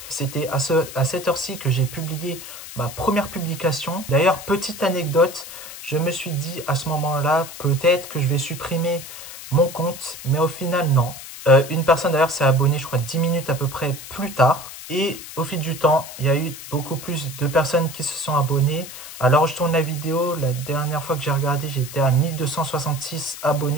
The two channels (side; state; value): left; noise; hiss, 13 dB below the sound